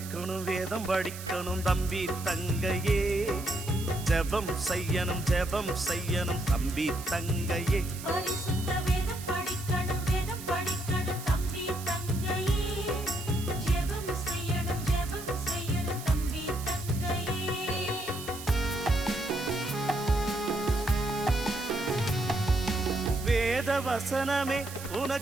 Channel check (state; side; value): noise; right; hiss, 13 dB below the sound